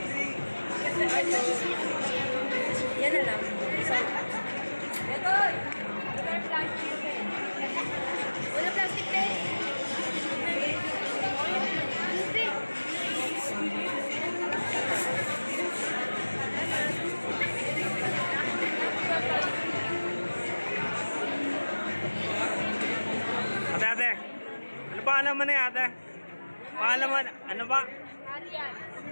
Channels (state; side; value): inverted; both; correlation -1.00